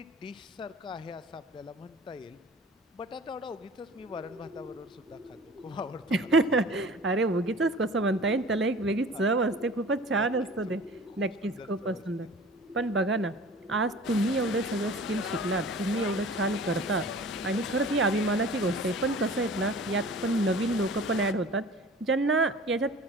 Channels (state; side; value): normal; both; correlation 0.43